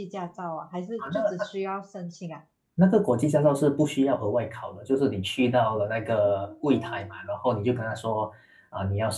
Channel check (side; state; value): both; identical; correlation 1.00